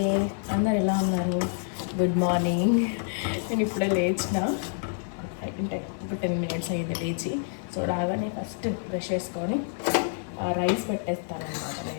అందరు ఎలా ఉన్నారు? Good morning. నేను ఇప్పుడే లేచిన, అంటే ఇప్పుడు 10 minutes అయింది లేచి. సో రాగానే ఫస్ట్ బ్రష్ చేసుకొని రైస్ పెట్టేస్తాను అనమాట.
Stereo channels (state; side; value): silent; right; digital silence